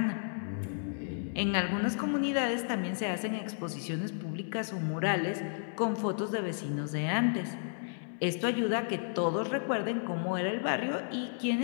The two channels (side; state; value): right; silent; digital silence